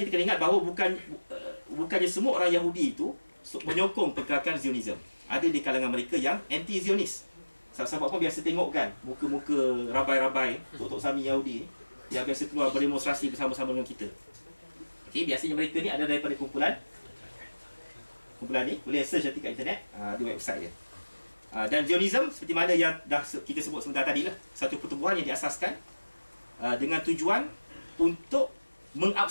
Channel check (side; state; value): both; inverted; correlation -1.00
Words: kena ingat bahawa bukannya semua orang Yahudi itu menyokong pergerakan Zionism. Ada di kalangan mereka yang anti-Zionis. Sebab apa biasa tengok kan muka-muka rabai-rabai Tok Sami Yahudi yang biasa keluar berdemonstrasi bersama-sama dengan kita. Okey, biasanya mereka ni ada daripada kumpulan ni, boleh search nanti kat internet, di website dia. Dan Zionism seperti mana yang dah kita sebut sebentar tadi lah, satu pertubuhan yang diasaskan dengan tujuan untuk